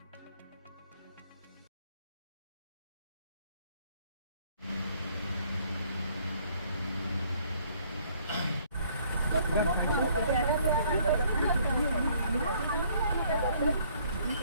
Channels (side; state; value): both; inverted; correlation -0.63